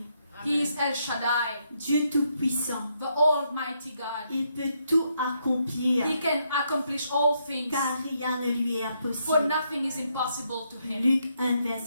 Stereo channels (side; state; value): both; inverted; correlation -0.77